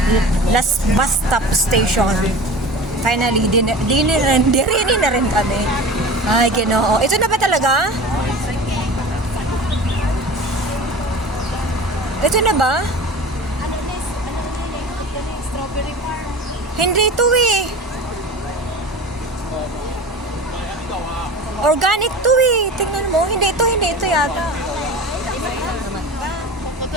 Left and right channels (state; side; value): normal; both; correlation 0.35